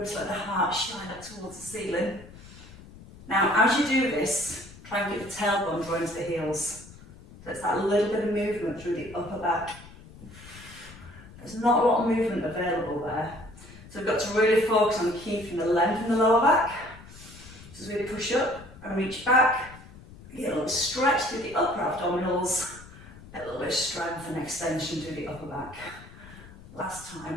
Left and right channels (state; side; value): noise; left; rumble, 19 dB below the sound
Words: let the heart shine up towards the ceiling. Now, as you do this, try and get the tailbone drawn to the heels. So it's that little bit of movement through the upper back. There's not a lot of movement available there. So we've got to really focus on keeping the length in the lower back. So as we push up and reach back, get a little stretch through the upper abdominals, a little bit of strength and extension through the upper back. Last